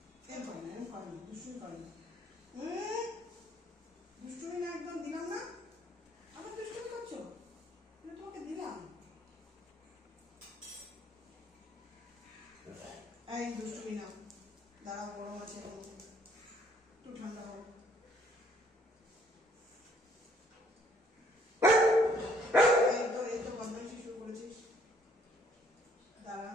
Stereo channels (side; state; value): both; normal; correlation 0.64